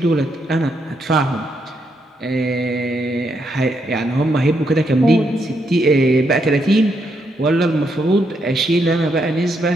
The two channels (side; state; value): both; normal; correlation 0.78